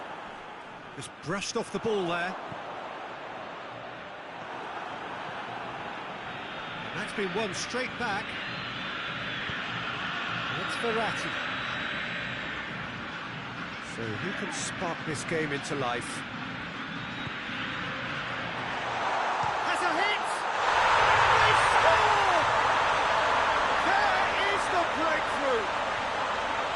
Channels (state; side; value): identical; both; correlation 1.00